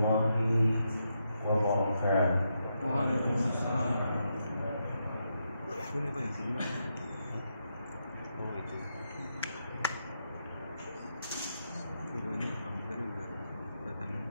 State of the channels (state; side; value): inverted; both; correlation -0.82